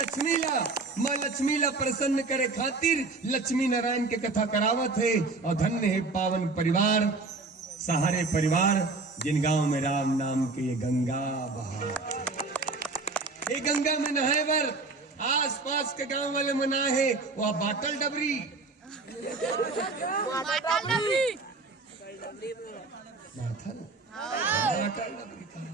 लक्ष्मी ला प्रसन्न करे खातिर लक्ष्मी नारायण के कथा करावत है, और धन्य है पावन परिवार, सहारे परिवार, जिन गांव में राम नाम के ये गंगा बहा। ये गंगा में नहाए बर आस पास के गांव वाले मनाए है, वह बाटल डबरी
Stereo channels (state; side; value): quieter; left; 3.7 dB